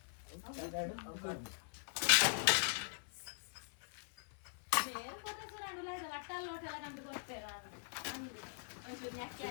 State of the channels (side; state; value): right; silent; 50 dB below the other